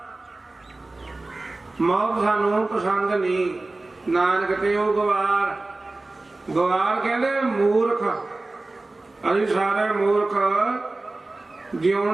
ਮੌਤ ਸਾਨੂੰ ਪਸੰਦ ਨਹੀਂ। ਨਾਨਕ ਤੇ ਉਹ ਗਵਾਰ ਕਹਿੰਦੇ ਮੂਰਖ। ਅਸੀਂ ਸਾਰੇ ਮੂਰਖ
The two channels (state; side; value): quieter; left; 3.1 dB